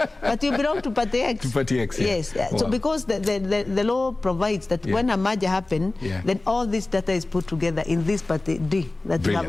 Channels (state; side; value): quieter; right; 3.0 dB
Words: But you belong to party X. To party X, yes. Wow. So because the law provides that when a merger happens, then all this data is put together in this party D. That you have